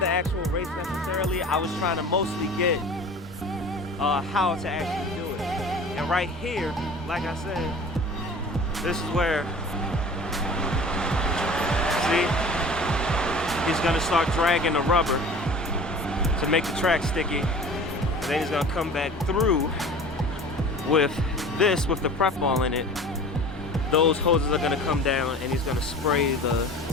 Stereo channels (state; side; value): normal; both; correlation 0.41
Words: actual race necessarily. I was trying to mostly get how to actually do it. And right here, like I said, this is where, see, he's gonna start dragging the rubber to make the track sticky. And then he's gonna come back through with this, with the prep ball in it. Those hoses are gonna come down and he's gonna spray the